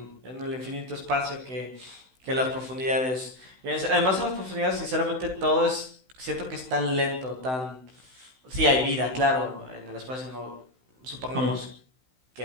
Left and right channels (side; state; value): left; late; 16 ms